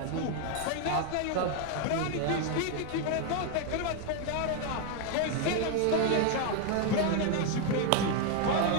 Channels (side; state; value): both; different; correlation 0.01